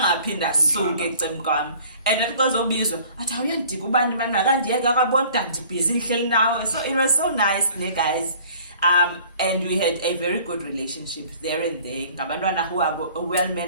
suke ecem kwami and athi xozobizwa athi awuyandika ubani manje akandiyeke akabona ndibhizi nihleli nawe so it was so nice ne guys. And we had a very good relationship there and there. Ngabantwana who are well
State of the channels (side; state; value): both; inverted; correlation -0.51